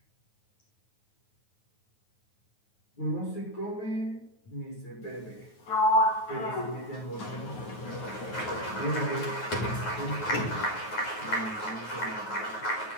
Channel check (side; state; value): right; late; 9.3 ms